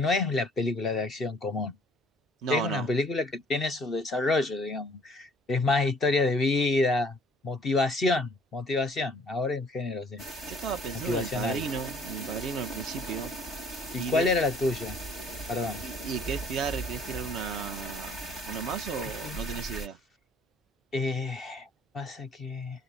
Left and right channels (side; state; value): both; normal; correlation 0.57